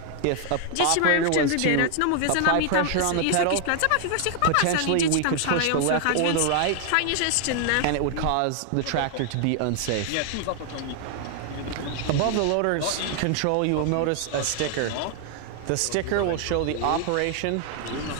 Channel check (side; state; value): both; different; correlation 0.00